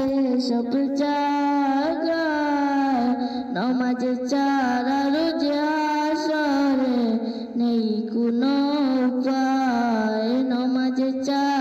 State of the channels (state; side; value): identical; both; correlation 1.00